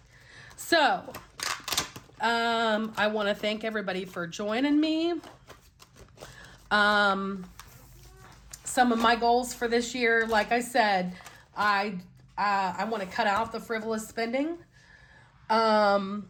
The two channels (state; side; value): identical; both; correlation 1.00